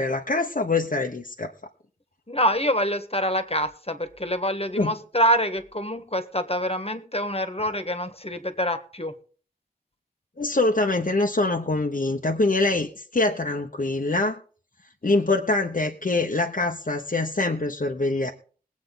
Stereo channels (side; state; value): both; normal; correlation 0.31